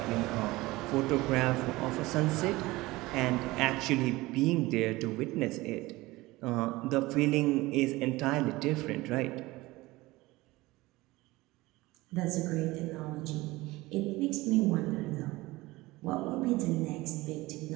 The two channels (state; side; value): quieter; left; 20.1 dB